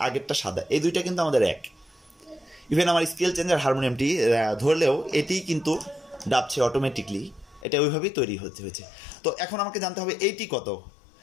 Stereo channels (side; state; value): right; drops out; at 7.7 s